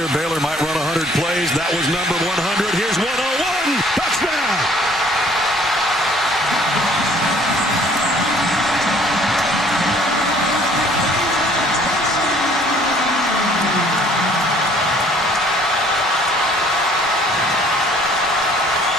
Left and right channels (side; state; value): both; normal; correlation 0.57